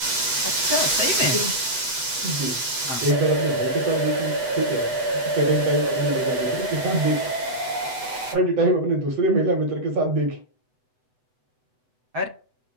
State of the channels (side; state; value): left; late; 8.1 ms